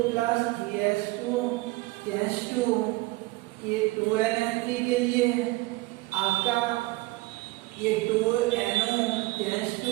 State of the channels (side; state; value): left; quieter; 21.2 dB